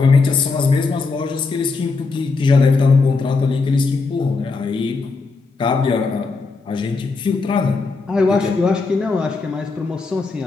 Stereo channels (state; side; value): quieter; right; 4.1 dB